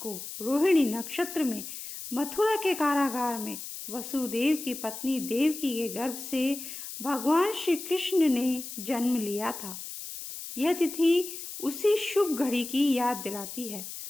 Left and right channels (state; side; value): noise; left; hiss, 9 dB below the sound